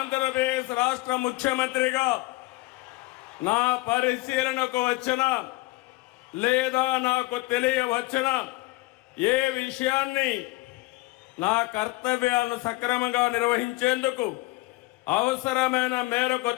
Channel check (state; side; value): quieter; right; 21.0 dB